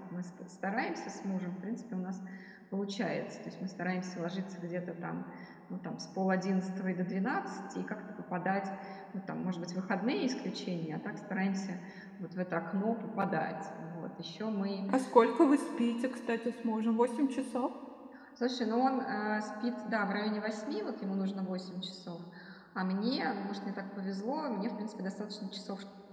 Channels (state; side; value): identical; both; correlation 1.00